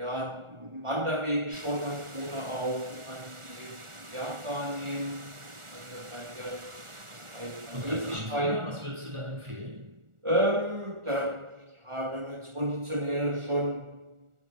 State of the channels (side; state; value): left; late; 1.4 ms